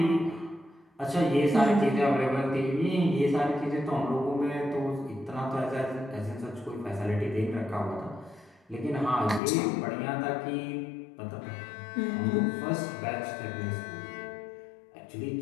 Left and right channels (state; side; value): drops out; right; at 9.4 s